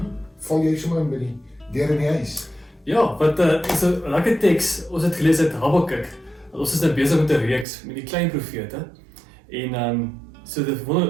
val jy sommer in by die deur in die huis? Ja, wat is 'n lekker teks. Ons het gelees uit Habakuk. Ons is nou besig met 'n reeks met die klein profete. En so dit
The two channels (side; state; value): left; drops out; at 7.7 s